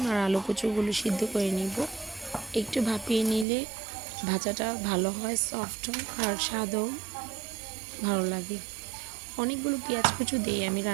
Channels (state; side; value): drops out; left; at 3.5 s